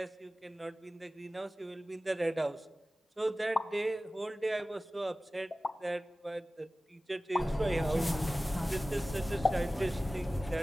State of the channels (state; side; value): normal; both; correlation 0.96